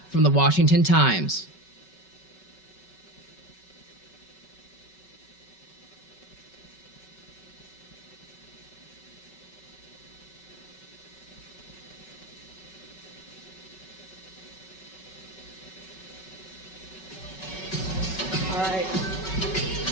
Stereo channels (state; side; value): late; right; 5.3 ms